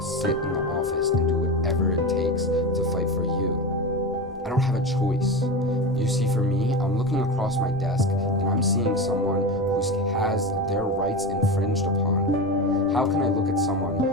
sit in the office and do whatever it takes to fight for you. I don't have a choice. You see, for me, I'm looking across my desk and I'm seeing someone who has their rights infringed upon. How can I look at someone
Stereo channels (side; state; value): both; normal; correlation 0.22